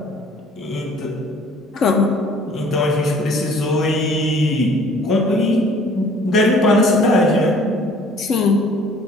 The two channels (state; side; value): normal; both; correlation 0.54